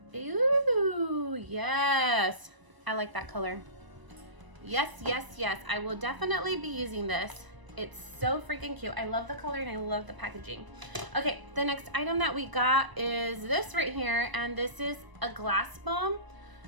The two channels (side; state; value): left; late; 1.0 ms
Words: Ooh, yes, I like that color. Yes, yes, yes, I will definitely be using this. It's so freaking cute. I love the color and I love the packaging. Okay, the next item that we got is this right here, and this is a glass balm,